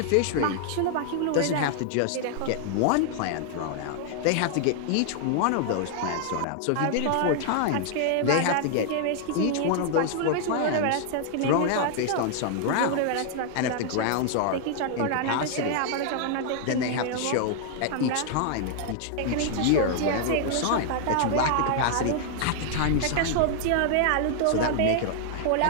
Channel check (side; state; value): both; different; correlation 0.00